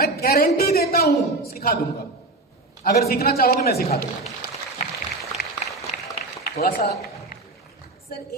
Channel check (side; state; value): left; quieter; 3.0 dB